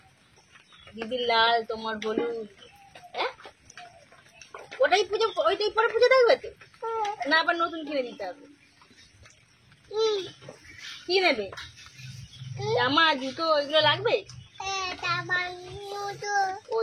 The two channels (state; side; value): identical; both; correlation 1.00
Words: দিদির লাল, তোমার হলুদ। ওটাই পুজো, ওইটাই পরে পুজো দেখবে তো? না আবার নতুন কিনে দিতে হবে? কি নেবে? জামা, জুতো, ওইগুলো লাগবে? ও